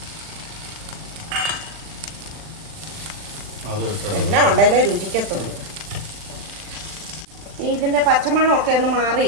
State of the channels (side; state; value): left; late; 39 ms